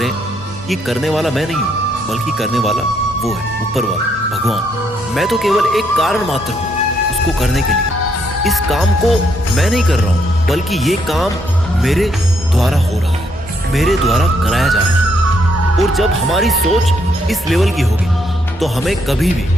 कि करने वाला मैं नहीं हूं, बल्कि करने वाला वो है, ऊपर वाला भगवान। मैं तो केवल एक कारण मात्र हूं उसको करने के लिए। इस काम को मैं नहीं कर रहा हूं, बल्कि ये काम मेरे द्वारा हो रहा है, मेरे द्वारा कराया जा रहा है। और जब हमारी सोच इस लेवल की होगी तो हमें कभी भी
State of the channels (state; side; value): normal; both; correlation 0.74